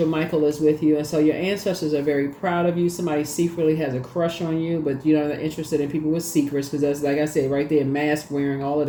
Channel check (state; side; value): identical; both; correlation 1.00